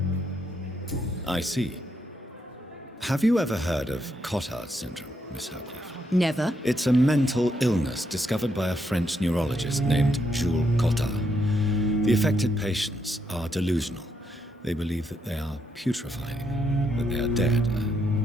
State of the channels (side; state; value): both; normal; correlation 0.77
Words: I see. Have you ever heard of Cotard syndrome, Miss Howcroft? Never. It's a mental illness discovered by a French neurologist named Jules Cotard. The affected patients are delusional. They believe that they are putrefying, that they are dead,